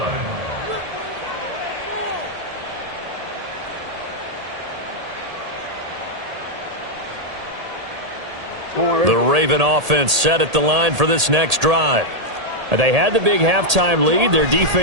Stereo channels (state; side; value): late; left; 1.8 ms